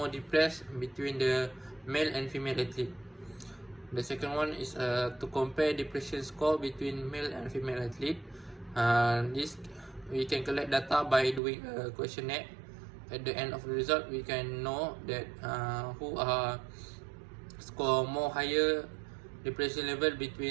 depressed between the male and female athlete. The second one is to compare depression score between male and female athlete. This we can collect data by doing a questionnaire. At the end of the result, we can know that who are score more higher depression level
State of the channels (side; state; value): left; drops out; at 11.4 s